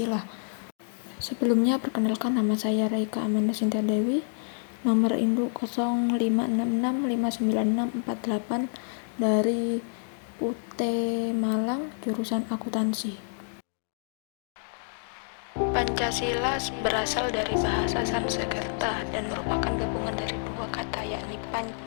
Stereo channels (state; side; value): silent; right; digital silence